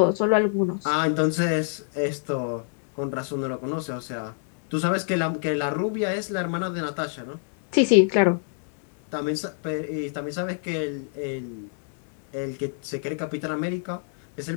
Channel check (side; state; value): right; silent; 60 dB below the other